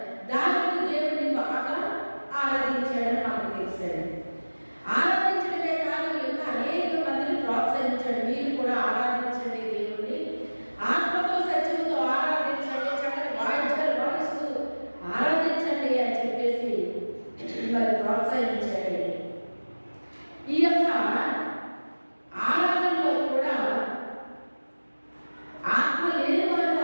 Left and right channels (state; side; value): inverted; both; correlation -1.00